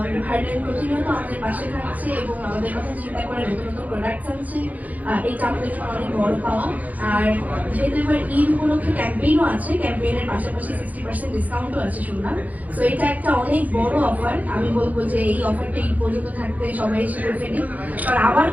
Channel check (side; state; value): left; late; 0.077 ms